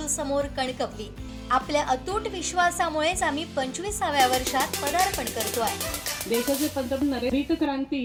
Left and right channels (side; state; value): both; identical; correlation 1.00